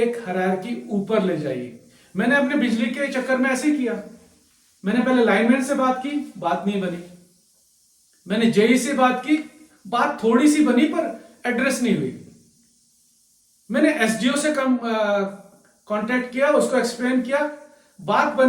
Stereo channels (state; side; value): identical; both; correlation 1.00